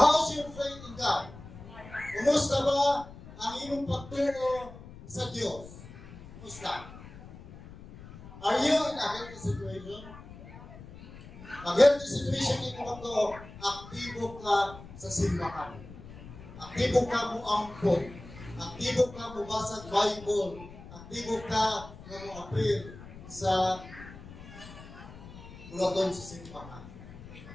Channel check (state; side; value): noise; left; rumble, 16 dB below the sound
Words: your faith in God? Kumusta ba ang iyong pagtuo sa Diyos? Kumusta? Are you in a healthy situation? Pag healthy situation ito pagtuo, aktibo ka sa simbahan. Aktibo ka mo ampon. Aktibo ka mo basag Bible. Aktibo ka na mo appeal sa bulaton sa simbahan.